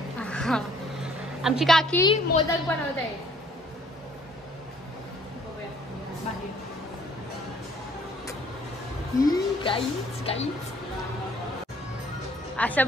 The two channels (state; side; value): normal; both; correlation 0.59